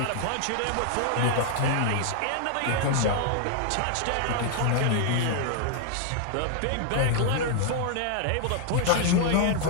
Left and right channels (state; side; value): different; both; correlation 0.00